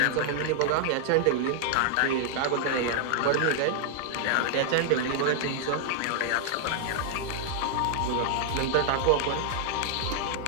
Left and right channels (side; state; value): both; different; correlation 0.00